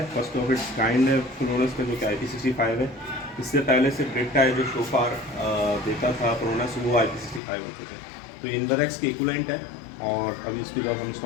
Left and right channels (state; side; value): drops out; right; at 7.4 s